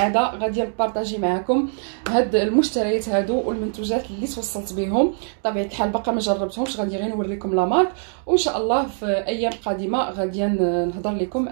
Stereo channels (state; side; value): silent; left; digital silence